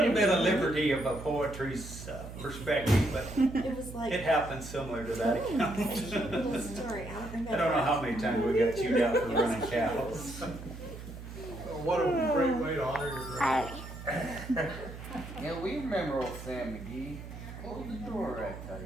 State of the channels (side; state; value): right; noise; hum, 12 dB below the sound